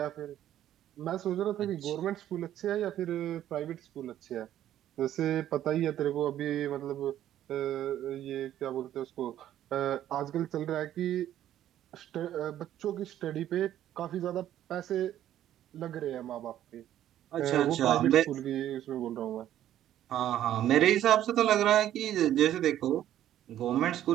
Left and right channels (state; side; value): quieter; left; 11.9 dB